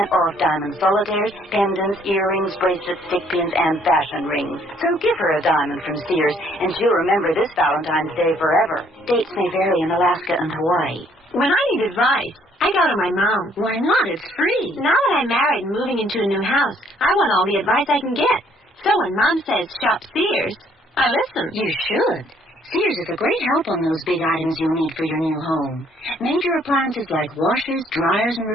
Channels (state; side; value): normal; both; correlation 0.64